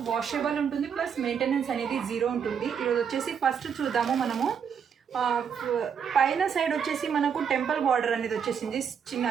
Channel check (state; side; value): quieter; left; 7.3 dB